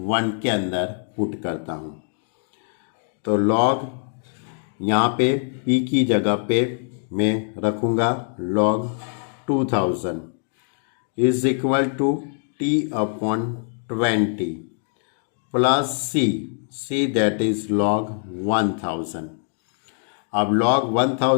1 के अंदर पुट करता हूं, तो लॉग यहाँ पे p की जगह पे मैं रखूँगा log 2000 is equal to t upon 20 plus c that is log 1000। अब log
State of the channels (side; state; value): right; silent; digital silence